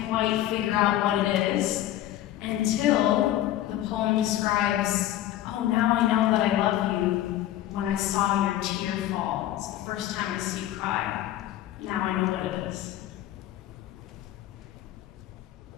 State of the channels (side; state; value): right; quieter; 13.4 dB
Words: quite figure out what it is until the poem describes, oh, now I know that I love you when I saw your tear fall. It's the first time I see you cry. Now I know what it is.